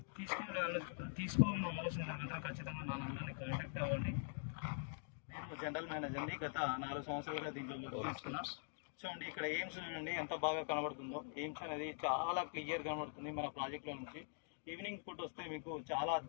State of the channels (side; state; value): right; silent; digital silence